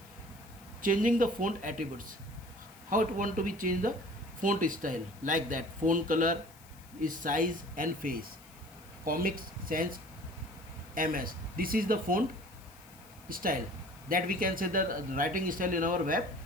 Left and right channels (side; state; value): left; noise; hiss, 24 dB below the sound